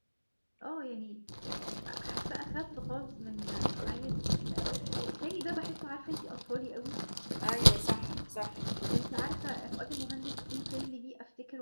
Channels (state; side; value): inverted; both; correlation -1.00